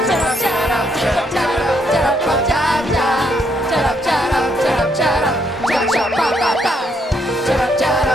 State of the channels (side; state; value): both; normal; correlation 0.73